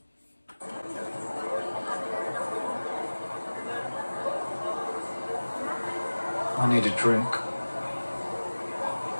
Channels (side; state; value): both; inverted; correlation -1.00